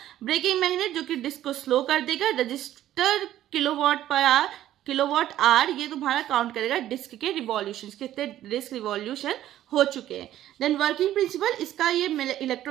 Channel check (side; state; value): left; quieter; 12.7 dB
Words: ब्रेकिंग मैग्नेट जो कि डिस्क को स्लो कर देगा। रजिस्टर किलोवाट आवर ये तुम्हारा काउंट करेगा डिस्क के रिवॉल्यूशन, कितने डिस्क रिवॉल्यूशन हो चुके हैं। देन वर्किंग प्रिंसिपल, इसका ये